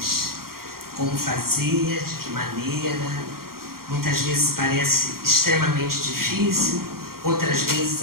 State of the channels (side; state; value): left; late; 0.93 ms